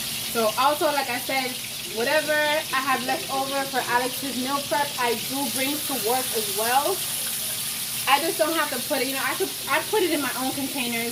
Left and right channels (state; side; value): identical; both; correlation 1.00